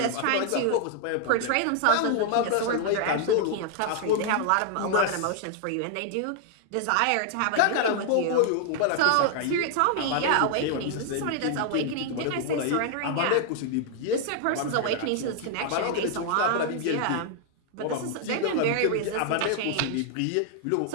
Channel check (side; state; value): both; different; correlation 0.00